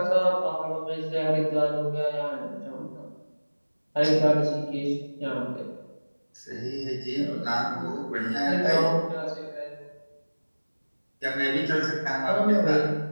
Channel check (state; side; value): inverted; both; correlation -1.00